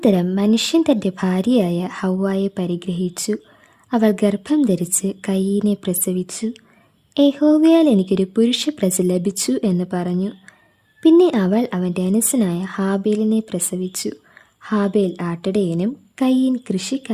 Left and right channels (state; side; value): identical; both; correlation 1.00